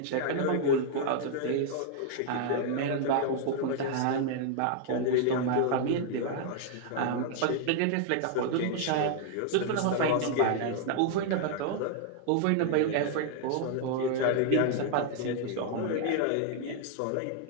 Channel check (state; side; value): different; both; correlation 0.00